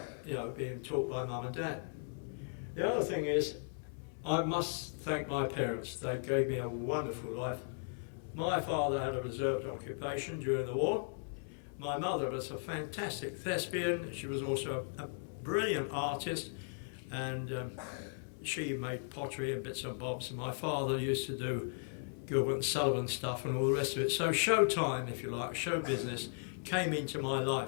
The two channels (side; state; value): right; silent; 53 dB below the other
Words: being taught by mum and dad. The other thing is, I must thank my parents. They gave me a wonderful life. My father had a reserved occupation during the war. My mother was a fantastic thespian. She was also a brilliant artist, and she made pottery and bits and bobs. And my father used to do Gilbert and Sullivan stuff and all the rest of it. So showtime, if you like, show business, came into my